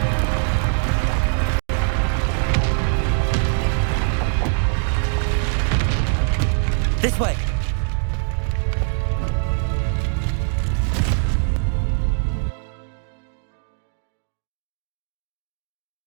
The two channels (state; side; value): silent; left; 55 dB below the other